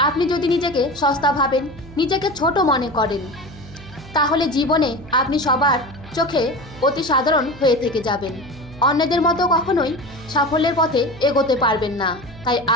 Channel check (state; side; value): noise; right; hum, 18 dB below the sound